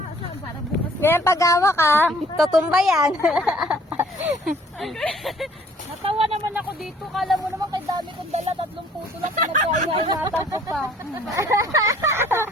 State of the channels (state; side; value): normal; both; correlation 0.57